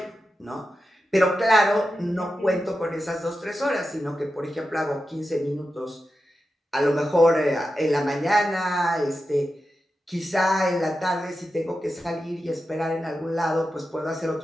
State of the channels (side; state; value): both; normal; correlation 0.90